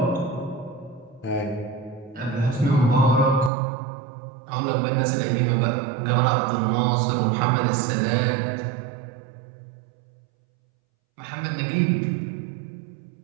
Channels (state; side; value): drops out; left; at 3.5 s